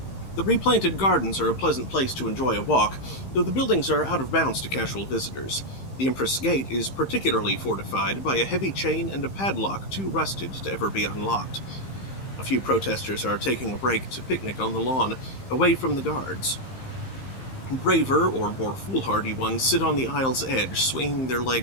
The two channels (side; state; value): right; late; 15 ms